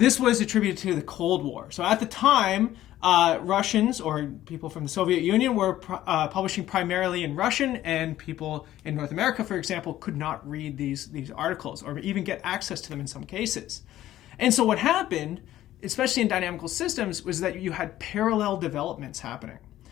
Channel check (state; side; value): quieter; right; 13.7 dB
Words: was attributed to the Cold War. So at the time, Russians or people from the Soviet Union were publishing primarily in Russian, and people in North America, for example, could not read these articles or even get access to them in some cases. And so what happened, especially in dynamical systems, was that you had parallel developments happening.